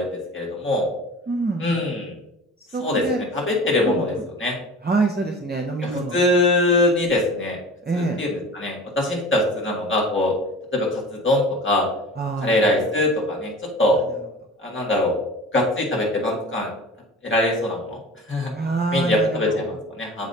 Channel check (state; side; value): normal; both; correlation 0.38